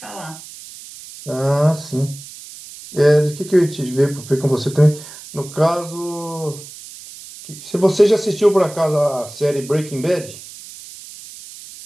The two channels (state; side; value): noise; right; hiss, 16 dB below the sound